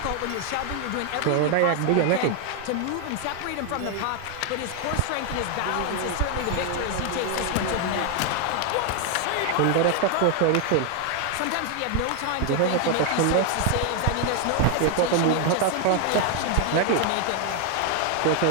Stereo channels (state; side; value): different; both; correlation 0.01